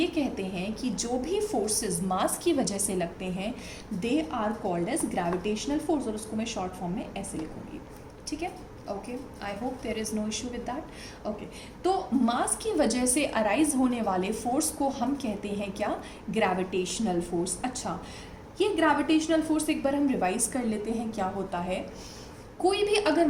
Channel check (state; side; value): identical; both; correlation 1.00